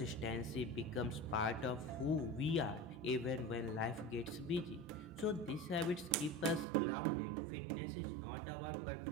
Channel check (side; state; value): left; drops out; at 6.7 s